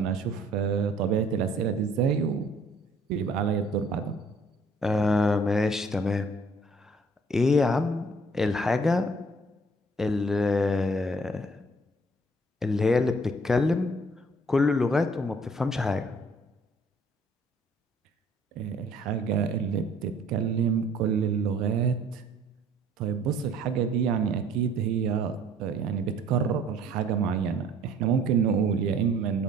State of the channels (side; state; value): both; normal; correlation 0.57